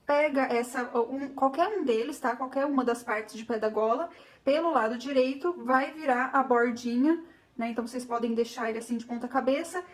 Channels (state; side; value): identical; both; correlation 1.00